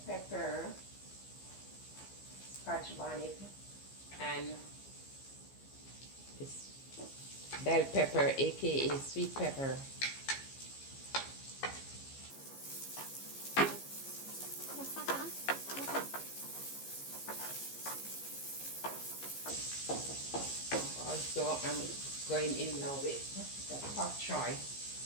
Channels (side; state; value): right; late; 15 ms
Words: pepper, scotch bonnet, and this bell pepper, aka sweet pepper. Also, I'm going in now with the pak choy.